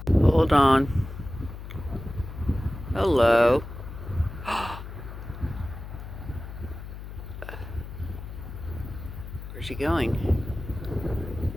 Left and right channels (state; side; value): noise; left; hum, 11 dB below the sound